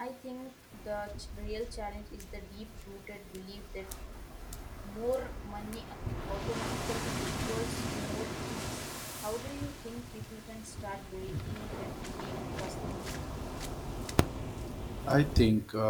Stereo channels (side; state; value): both; identical; correlation 1.00